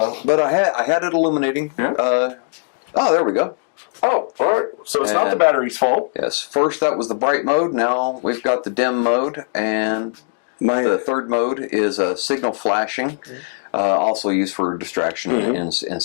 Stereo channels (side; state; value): right; silent; digital silence